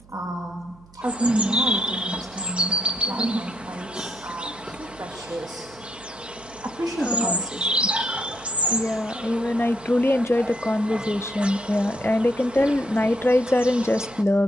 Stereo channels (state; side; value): noise; right; hum, 25 dB below the sound